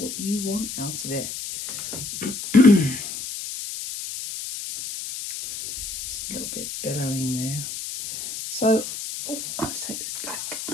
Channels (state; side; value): noise; left; hiss, 7 dB below the sound